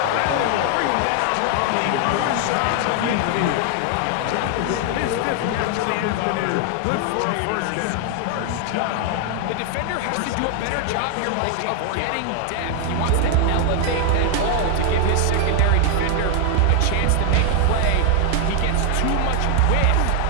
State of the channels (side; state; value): both; different; correlation 0.00